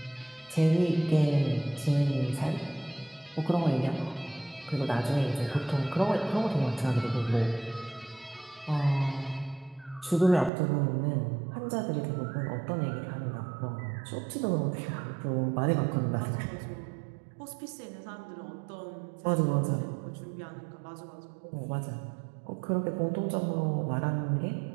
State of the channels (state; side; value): drops out; left; at 10.5 s